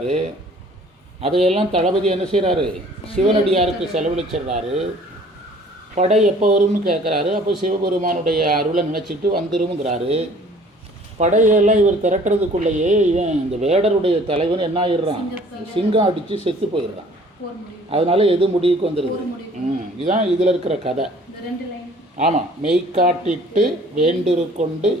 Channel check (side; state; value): both; normal; correlation 0.53